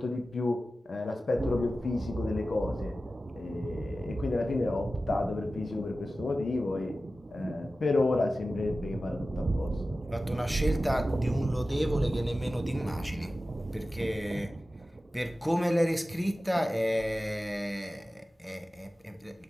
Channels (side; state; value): both; normal; correlation 0.95